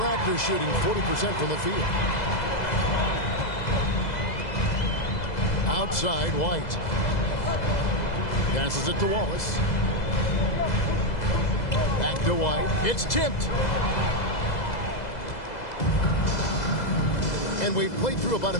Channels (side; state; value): right; late; 2.0 ms